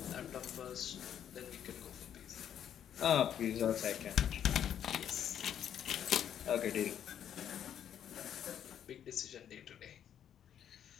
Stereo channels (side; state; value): right; quieter; 9.6 dB